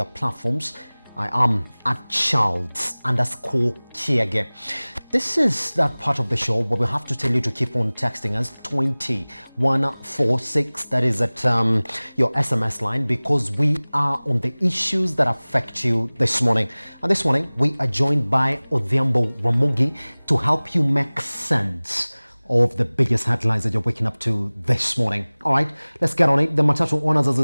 platforms. I am at Charles_Kiage. This is that part of the show where we have to tell you to keep on texting us 20146. That is at your SMS line, because we are on the issues that affect you this morning. And this morning we are joined by Odhiambo Ramogi to help you make sense of the biggest headlines that you're waking up to this morning. All right, let's get on it. The Matatu Owners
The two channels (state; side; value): inverted; both; correlation -1.00